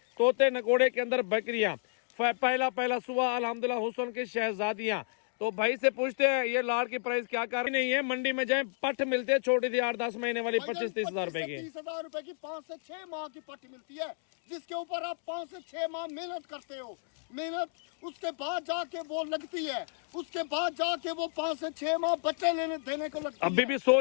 तोते नकोड़े के अंदर बकरियां, पहला सुबह अल्हम्दुलिल्लाह हुसन की शहजादियां। तो भाई से पूछते हैं ये लाड़ की प्राइस क्या कर रही नहीं है। मंडी में जाए पट मिलते हैं छोटी थी 8-10 महीने वाली 25-30 हजार रुपए की, 30,000 रुपए की 5 से 6 माह की पट मिलती है, जिसके ऊपर आप 5 से 6 माह मेहनत करते हो। मेहनत उसके बाद जाके वो लगती है, उसके बाद जाके वो 5 से 6 माह बच्चे लेने देने को लगती अभी है। भी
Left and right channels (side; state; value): right; silent; digital silence